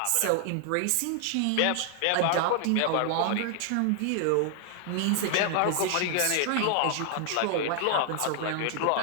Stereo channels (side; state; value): both; different; correlation 0.00